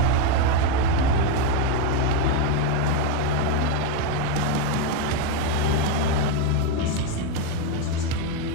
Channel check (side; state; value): both; different; correlation 0.03